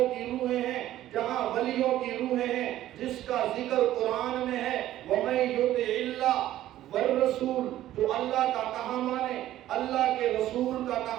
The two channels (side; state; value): left; quieter; 13.6 dB